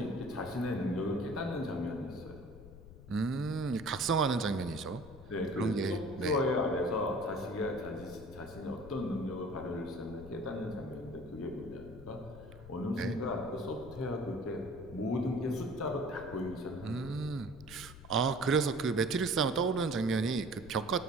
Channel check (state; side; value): noise; left; rumble, 16 dB below the sound